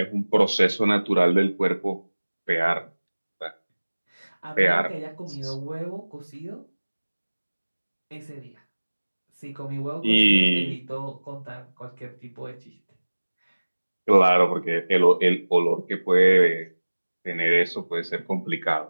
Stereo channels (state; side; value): inverted; both; correlation -1.00